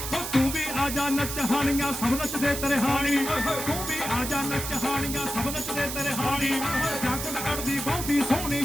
ਨੱਚ ਹਾਣੀਆਂ ਸਭ ਨੱਚਦੇ ਤੇਰੇ ਹਾਣੀ ਤੂੰ ਵੀ ਆ ਜਾ ਨੱਚ ਹਾਣੀਆਂ ਸਭ ਨੱਚਦੇ ਤੇਰੇ ਹਾਣੀ ਜਾਕਟ ਕੱਢਦੀ ਬਹੁਤੀ ਸੋਹਣੀ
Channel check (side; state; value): right; noise; hiss, 5 dB below the sound